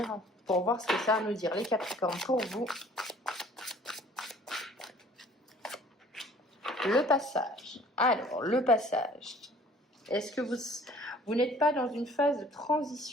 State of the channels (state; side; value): normal; both; correlation 0.53